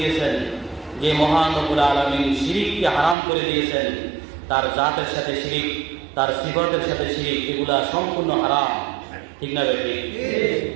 যে মহান রব্বুল আলামিন শিরিককে হারাম করে দিয়েছেন, তার জাতের সাথে শিরিক, তার সিফাতের সাথে শিরিক, এগুলা সম্পূর্ণ হারাম। ঠিক না বেশি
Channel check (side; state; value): left; drops out; at 3.2 s